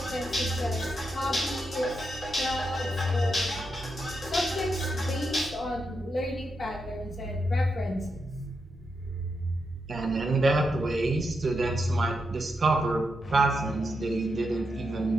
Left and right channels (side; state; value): both; normal; correlation 0.85